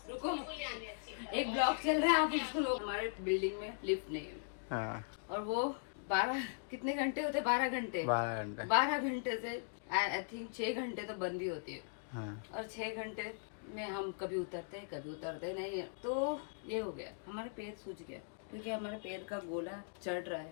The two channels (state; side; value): silent; right; digital silence